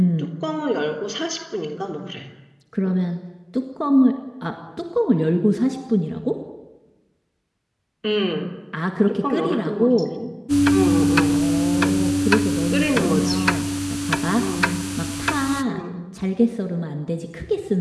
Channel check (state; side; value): identical; both; correlation 1.00